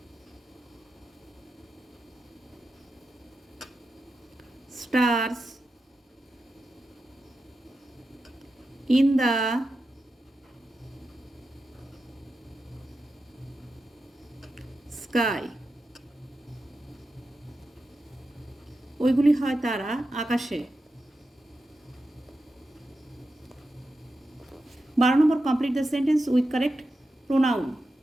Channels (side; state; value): both; normal; correlation 0.90